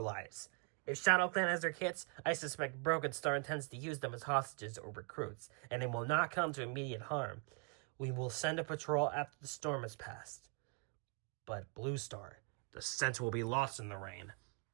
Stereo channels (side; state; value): left; quieter; 37.4 dB